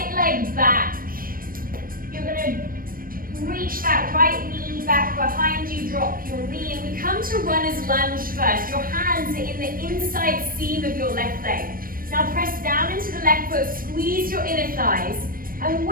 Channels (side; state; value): left; late; 0.41 ms